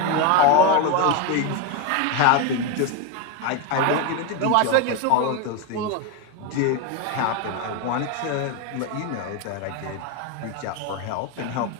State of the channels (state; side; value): different; both; correlation 0.03